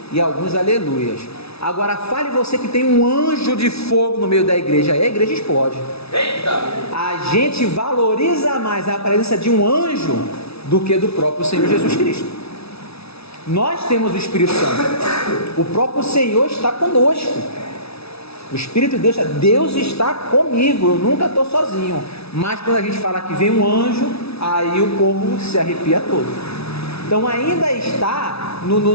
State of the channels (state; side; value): late; right; 0.79 ms